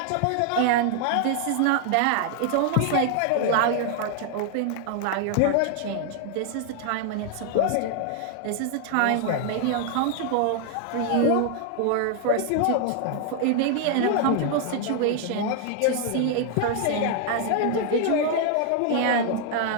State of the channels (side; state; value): both; different; correlation 0.00